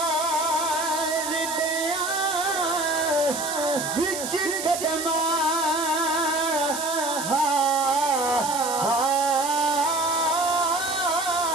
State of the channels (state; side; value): noise; right; hiss, 6 dB below the sound